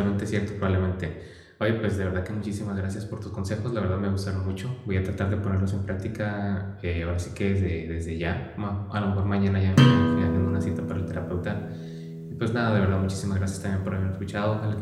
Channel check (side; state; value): both; identical; correlation 1.00